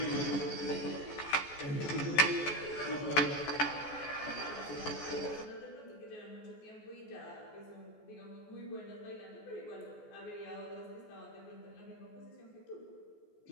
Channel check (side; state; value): right; late; 14 ms